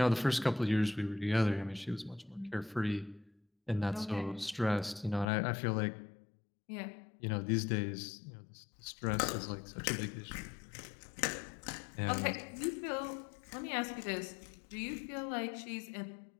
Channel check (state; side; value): drops out; right; at 5.3 s